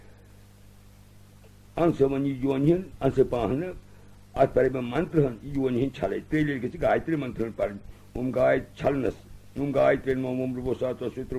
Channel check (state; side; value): identical; both; correlation 1.00